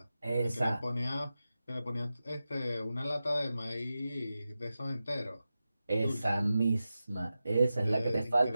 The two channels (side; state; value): both; inverted; correlation -0.93